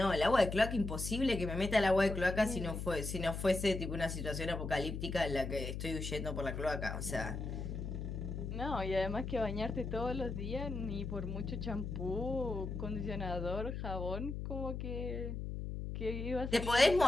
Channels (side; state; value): left; noise; hum, 5 dB below the sound